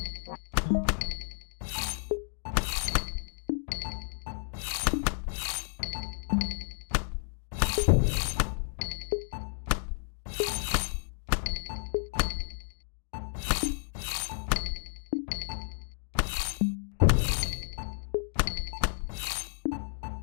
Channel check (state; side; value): silent; right; digital silence